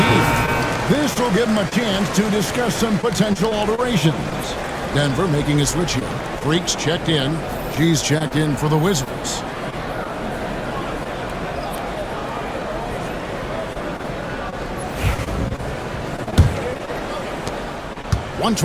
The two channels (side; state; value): both; identical; correlation 1.00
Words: This will give him a chance to discuss some potential alterations. Denver making a switch here. Freaks checked in. G's checked in for the Wizards.